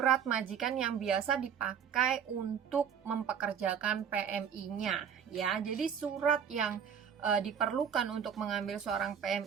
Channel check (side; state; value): left; quieter; 7.9 dB